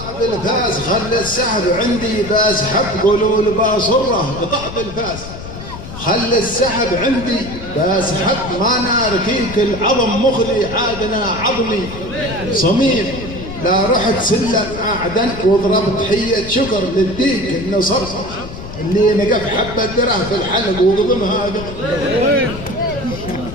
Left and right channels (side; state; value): left; noise; rumble, 11 dB below the sound